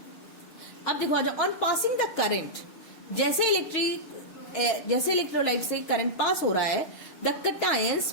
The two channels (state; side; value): late; right; 6.3 ms